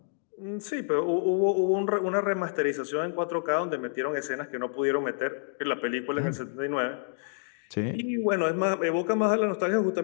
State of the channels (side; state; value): right; silent; digital silence